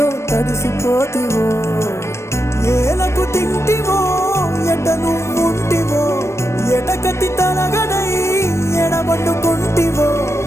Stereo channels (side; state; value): right; late; 0.13 ms